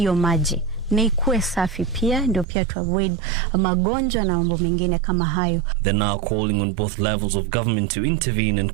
maji na ikuwe safi pia, ndio pia to avoid magonjwa na mambo mengine kama hayo. They're now calling on both levels of government to intervene and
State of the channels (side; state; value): left; drops out; at 2.5 s